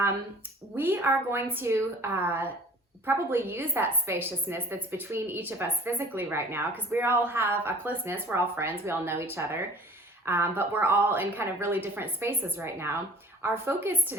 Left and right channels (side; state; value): both; normal; correlation 0.48